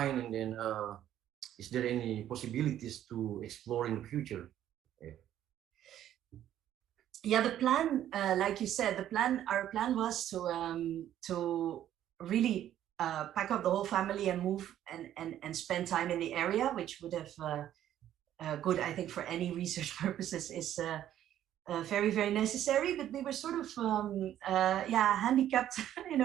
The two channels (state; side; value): quieter; left; 11.6 dB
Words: and then is there any possibilities to explore in the future? Yeah, the plan, like you said, our plan was to really pack up the whole family and move and spend time in the area, which would have good, I think, for any research purposes is very, very necessary. But we were sort of handicapped in